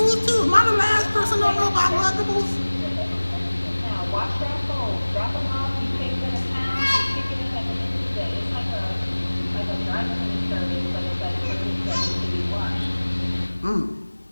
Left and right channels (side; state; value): both; inverted; correlation -1.00